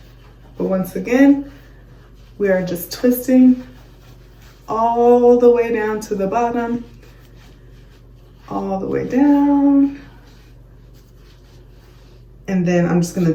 But once again, we are just twisting all the way down to the bottom, all the way down. And then I'm just gonna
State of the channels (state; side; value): identical; both; correlation 1.00